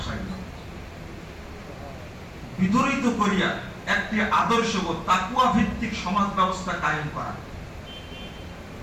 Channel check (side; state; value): both; identical; correlation 1.00